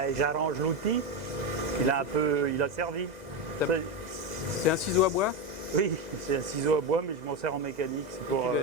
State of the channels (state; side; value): late; left; 2.0 ms